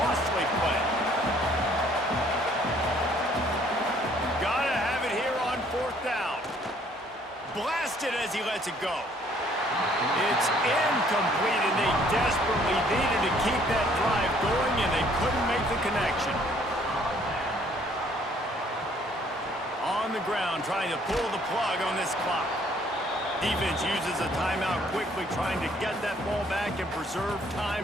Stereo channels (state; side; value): normal; both; correlation 0.62